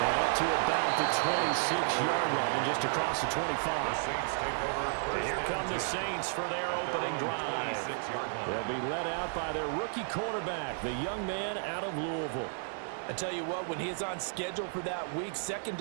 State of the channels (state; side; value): silent; left; digital silence